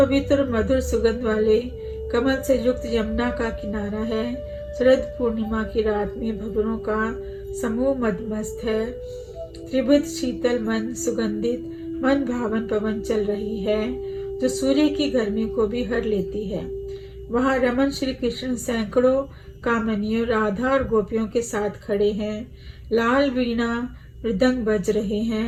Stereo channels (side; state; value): both; identical; correlation 1.00